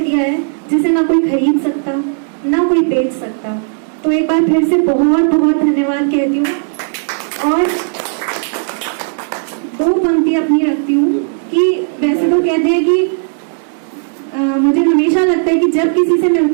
है जिसे ना कोई खरीद सकता, ना कोई बेच सकता। तो एक बार फिर से बहुत बहुत धन्यवाद कहती हूँ। और दो पंक्ति अपनी रखती हूँ कि वैसे तो कहते हैं कि मुझे हमेशा लगता है कि जब किसी से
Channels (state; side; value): silent; left; digital silence